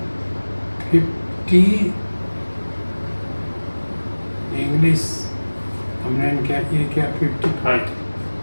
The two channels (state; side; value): inverted; both; correlation -1.00